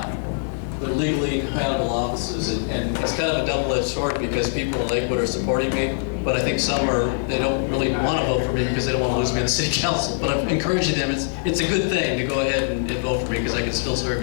They're legally incompatible offices, and it's kind of a double-edged sword because people in Lakewood are supporting me, but I think some they don't really want to vote for me because they don't want to lose me on the city council. But I'm encouraging them. It's a good thing to go ahead and vote for me because I can still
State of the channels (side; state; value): right; silent; 64 dB below the other